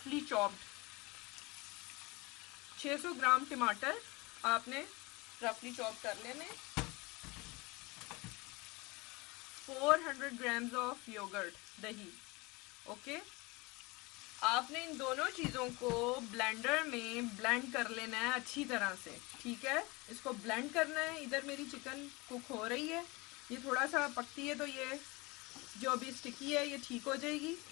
चॉप्ड। 600 ग्राम टमाटर आपने रफली चॉप कर लेने। 400 grams ऑफ योगर्ट दही। ओके, आपने इन दोनों चीज़ों को ब्लेंडर में ब्लेंड कर लेना है अच्छी तरह से, ठीक है। इसको ब्लेंड करना है। इधर मेरी चिकन कुक हो रही है, ये थोड़ा सा पकती है तो ये जो अभी स्टिकी है ये ठीक हो जाएगी।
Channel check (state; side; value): quieter; right; 24.7 dB